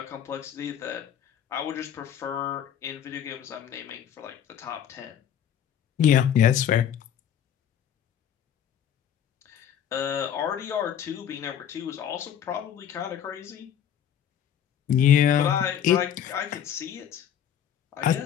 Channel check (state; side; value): quieter; right; 9.4 dB